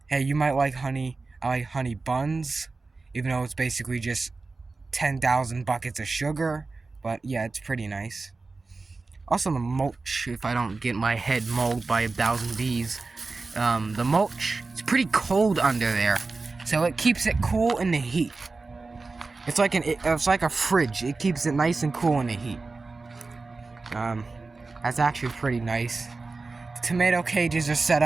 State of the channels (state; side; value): quieter; left; 3.8 dB